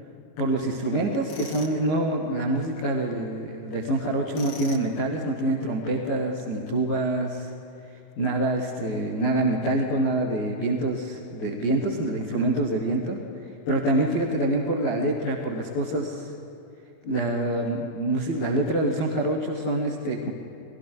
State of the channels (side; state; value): right; late; 26 ms